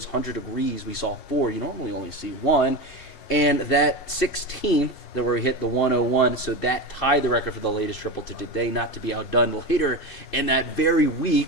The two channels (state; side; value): late; right; 3.3 ms